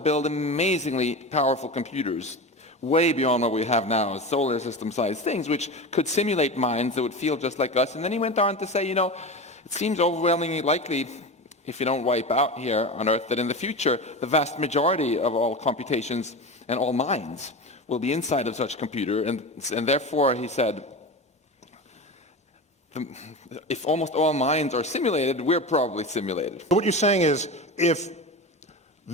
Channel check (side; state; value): both; normal; correlation 0.26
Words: amazingly powerful computers, way beyond what we have now, solar system-sized things, which could simulate minds that would feel just like us. And then he went on to say, you know, it seems overwhelmingly likely, if you don't wipe out here on Earth, that in the future, the vast majority of all computations and all minds will be inside of such a computer. And therefore, he said, if almost all minds are simulated, we're probably simulated. What you're saying is, if